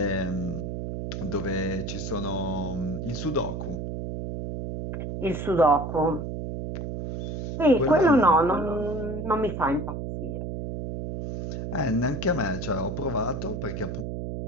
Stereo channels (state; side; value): noise; right; hum, 5 dB below the sound